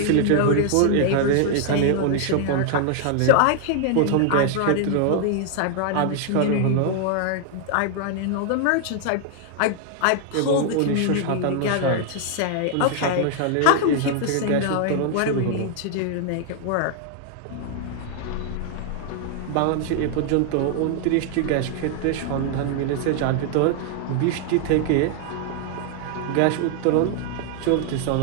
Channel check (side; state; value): both; different; correlation 0.00